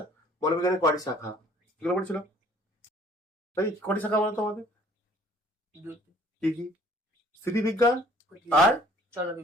বলবিজ্ঞানের কয়টি শাখা, এগুলো পড়েছিলাম। তাই কয়টি শাখা বলতো আমাদের? কি কি? স্থিতিবিজ্ঞান আর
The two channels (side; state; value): both; normal; correlation 0.56